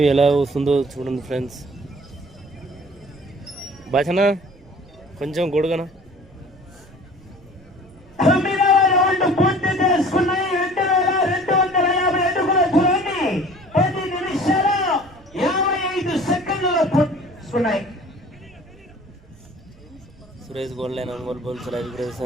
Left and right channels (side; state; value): right; noise; rumble, 26 dB below the sound